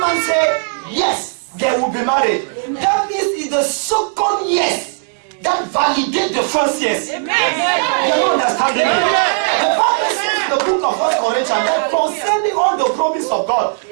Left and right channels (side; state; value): left; silent; 68 dB below the other